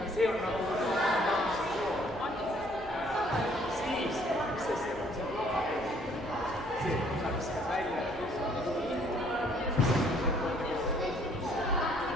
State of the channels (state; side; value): noise; right; hum, 16 dB below the sound